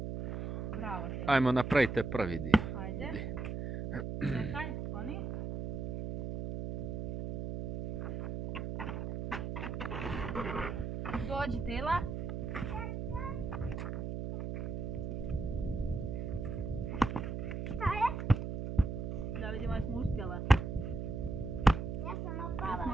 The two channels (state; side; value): noise; right; hum, 4 dB below the sound